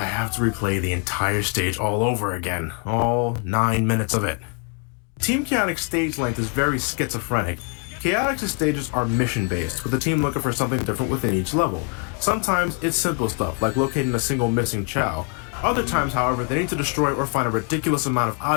have to replay the entire stage all over again. All 9 minutes of it. Team Chaotix stage length is very schizophrenic. Chaotix's stages are mission-based, with the team looking for something different within each level. Sometimes it's simple stuff, like locating a single missing Chow. Other times, however, they need to destroy or find a ridiculous amount of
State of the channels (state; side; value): quieter; right; 38.6 dB